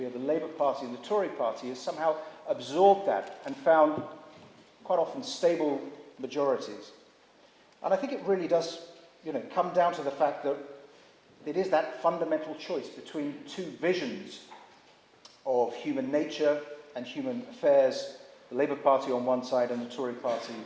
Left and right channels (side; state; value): both; identical; correlation 1.00